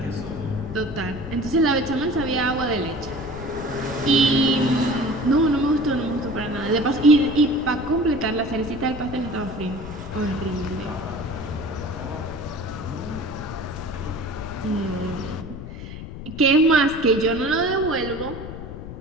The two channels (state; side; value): noise; left; rumble, 10 dB below the sound